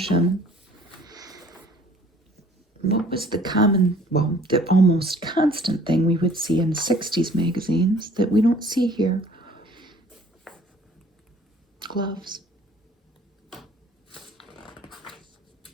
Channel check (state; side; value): normal; both; correlation 0.54